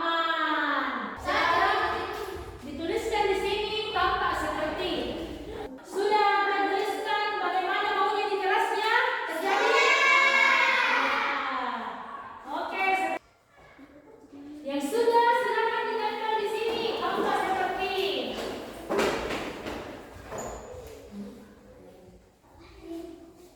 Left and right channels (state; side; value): identical; both; correlation 1.00